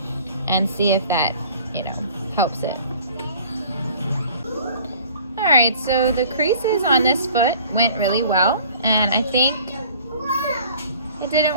And see if that, you know, helps it. All right, so the creases on this foot went really well, and I think it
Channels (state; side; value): inverted; both; correlation -0.50